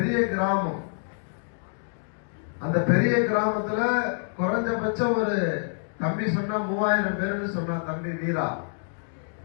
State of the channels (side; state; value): right; silent; digital silence